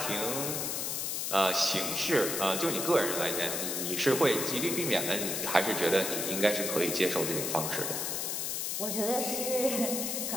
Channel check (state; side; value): noise; left; hiss, 1 dB below the sound